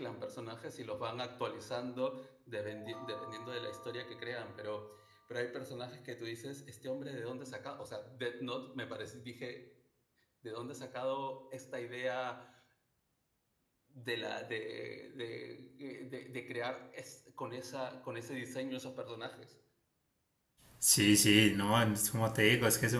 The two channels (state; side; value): identical; both; correlation 1.00